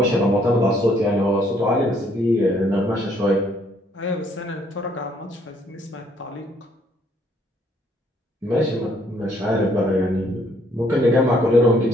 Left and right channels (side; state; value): both; normal; correlation 0.66